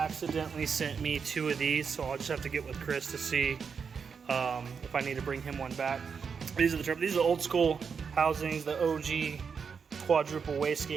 sent me 2 of these, so I'll just have to get with Chris to see if I need to bring him one back. These are the old school housings, the OG quadruple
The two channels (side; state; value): left; quieter; 6.1 dB